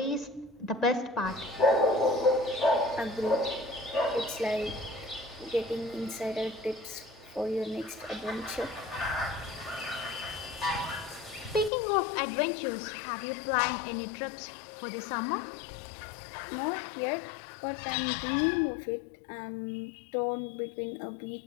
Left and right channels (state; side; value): drops out; right; at 11.7 s